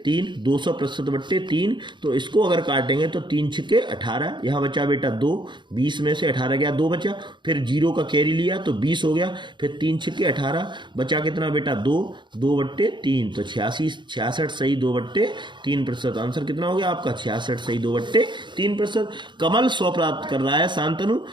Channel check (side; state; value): left; late; 0.23 ms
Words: 3, 200% बट्टे 3। तो इसको अगर काटेंगे तो 3 छक्के 18, यहाँ बचा बेटा 2, 20 में से 18 गया, 2 बचा, फिर 0 का कैरी लिया तो 20 हो गया, फिर 3 छक्के 18, बचा कितना बेटा 2, 2 बट्टे 3, तो 66 सही 2 बट्टे 3%। आंसर कितना हो गया आपका 66 सही 2 बट्टे 3%। कमल 100 प्राप्त कर रहा है, शांतनु